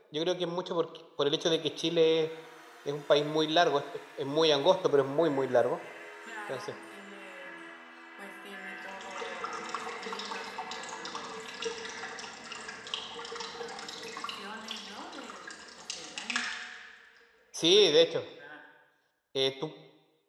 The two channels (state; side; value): identical; both; correlation 1.00